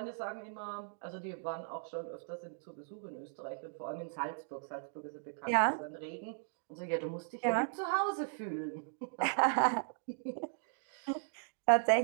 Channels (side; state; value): left; silent; digital silence